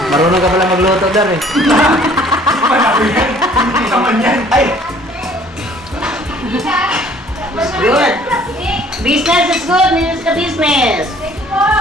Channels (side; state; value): both; normal; correlation 0.56